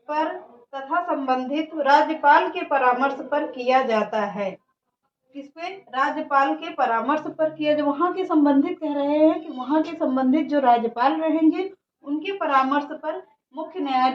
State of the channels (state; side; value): identical; both; correlation 1.00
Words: तथा संबंधित राज्यपाल के परामर्श पर किया जाता है। किसपे, राज्यपाल के परामर्श पर किया, जो वहाँ के संबंधित कह रहे हैं कि वहाँ के संबंधित जो राज्यपाल रहेंगे उनके परामर्श पर मुख्य